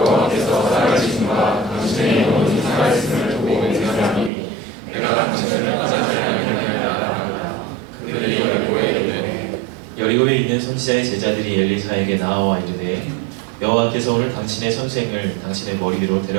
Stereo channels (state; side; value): drops out; left; at 4.3 s